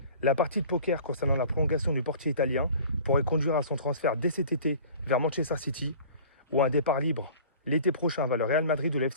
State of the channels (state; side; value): inverted; both; correlation -0.44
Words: La partie de poker concernant la prolongation du portier italien pourrait conduire à son transfert dès cet été vers Manchester City ou à un départ libre l'été prochain vers le Real Madrid ou le